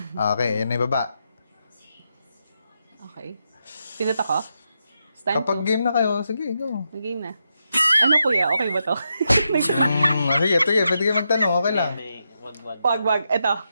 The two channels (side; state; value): both; inverted; correlation -0.84